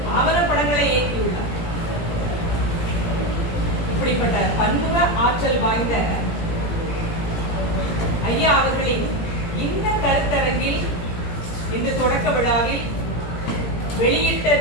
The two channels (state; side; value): late; right; 17 ms